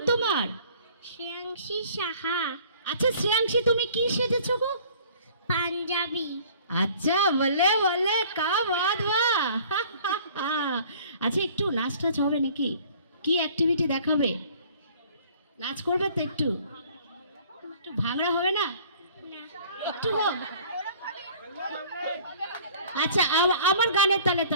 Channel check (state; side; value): inverted; both; correlation -0.52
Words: তোমার? শ্রেয়াংশী সাহা। আচ্ছা শ্রেয়াংশী, তুমি কি সেজেছো গো? পাঞ্জাবি। আচ্ছা, বলে বলে কা বাত বাহ। আচ্ছা, একটু নাচ টাচ হবে নাকি? কি অ্যাক্টিভিটি দেখাবে? নাচ করবে তো? একটু একটু ভাঙড়া হবে না? না। একটু হোক। আচ্ছা, আমার গানের তালে